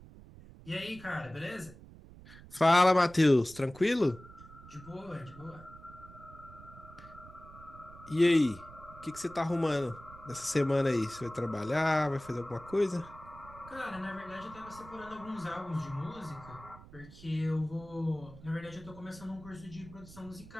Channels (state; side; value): noise; right; rumble, 18 dB below the sound